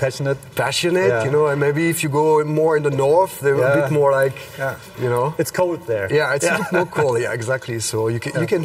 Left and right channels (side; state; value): both; identical; correlation 1.00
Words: you know, and maybe if you go more in the north, they're a bit more like, you know. It's cold there. Yeah, it's a bit more cold, exactly. So you can